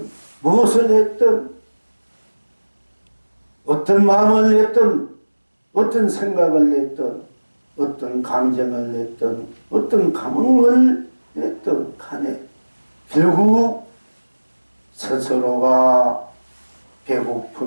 무엇을 했던 어떤 마음을 냈던 어떤 생각을 냈던 어떤 감정을 냈던 어떤 감흥을 냈던 간에 결국 스스로가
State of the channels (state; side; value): inverted; both; correlation -1.00